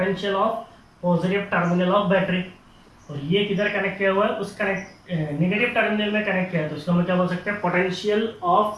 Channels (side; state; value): both; identical; correlation 1.00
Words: of positive terminal of battery. और ये किधर कनेक्ट किया हुआ है, उस नेगेटिव टर्मिनल में कनेक्ट किया है। तो इसको हम क्या बोल सकते हैं, potential